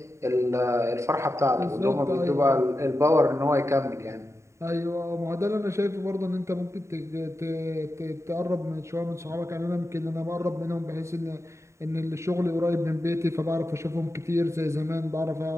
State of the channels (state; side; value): late; left; 0.14 ms